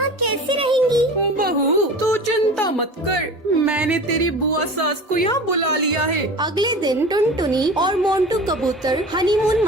कैसे रहेंगी? बहू तू चिंता मत कर, मैंने तेरी बुआ सास को यहाँ बुला लिया है। अगले दिन टुनटुनी और मोंटू कबूतर हनीमून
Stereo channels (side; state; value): both; normal; correlation 0.36